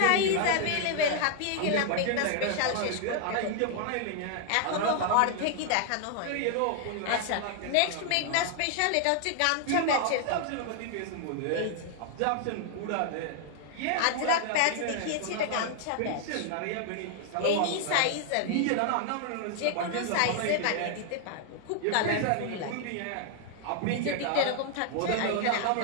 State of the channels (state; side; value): different; both; correlation 0.00